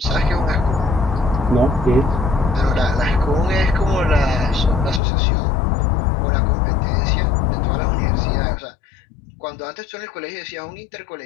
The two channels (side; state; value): right; drops out; at 5.0 s